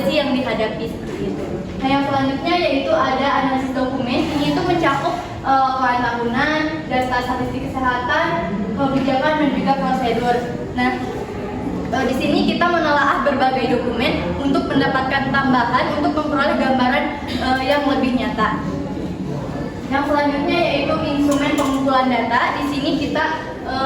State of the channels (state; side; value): identical; both; correlation 1.00